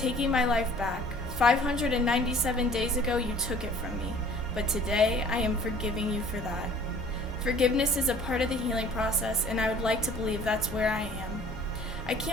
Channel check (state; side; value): normal; both; correlation 0.51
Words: my life back. 597 days ago you took it from me, but today I am forgiving you for that. Forgiveness is a part of the healing process, and I would like to believe that's where I am. I